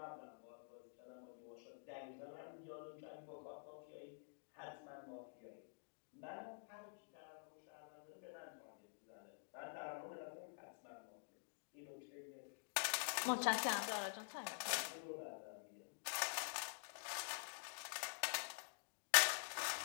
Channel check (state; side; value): silent; right; digital silence